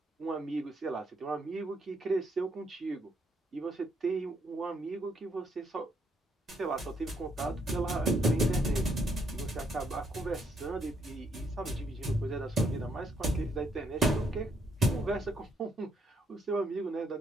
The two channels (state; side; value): normal; both; correlation 0.72